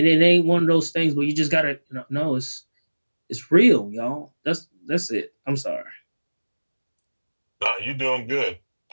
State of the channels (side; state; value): both; inverted; correlation -1.00